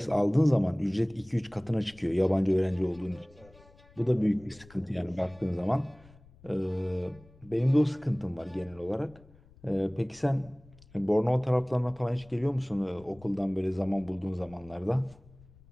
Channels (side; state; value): left; noise; rumble, 25 dB below the sound